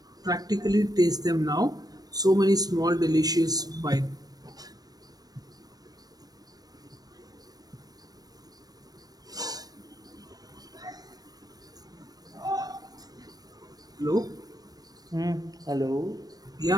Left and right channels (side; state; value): left; late; 0.19 ms